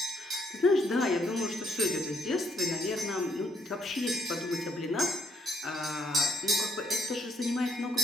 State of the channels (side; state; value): both; normal; correlation 0.70